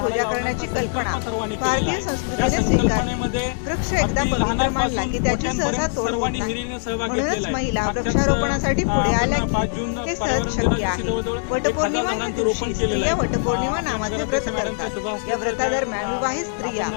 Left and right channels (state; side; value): silent; right; digital silence